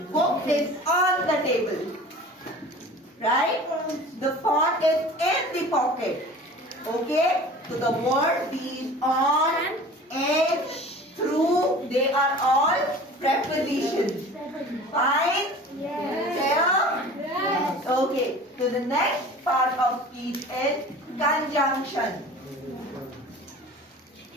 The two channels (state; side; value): normal; both; correlation 0.41